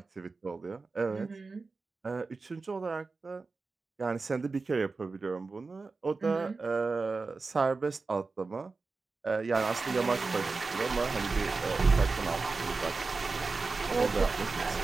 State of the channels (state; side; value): quieter; left; 4.0 dB